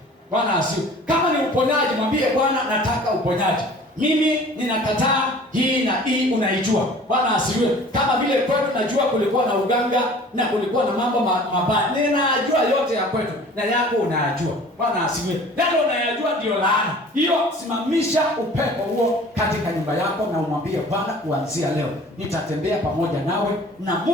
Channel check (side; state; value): both; normal; correlation 0.47